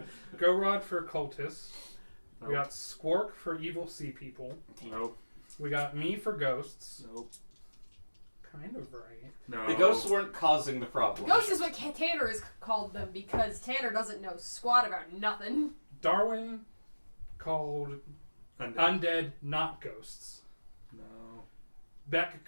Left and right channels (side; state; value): both; inverted; correlation -1.00